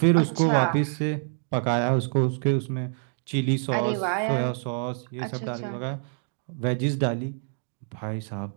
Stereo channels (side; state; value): left; silent; digital silence